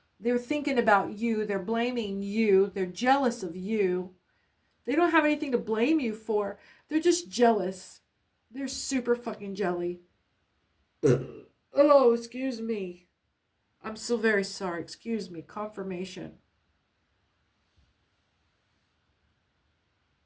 They're thinking about you, they're blaming you, they're jealous of you. They don't have anything to blame you for. They're just jealous. They're super fucking jelly. Oh, excuse me. I'm so very sorry. Excuse me. Confirmation.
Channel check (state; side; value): identical; both; correlation 1.00